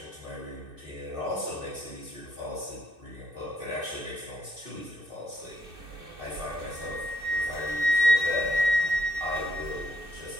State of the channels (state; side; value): late; left; 2.6 ms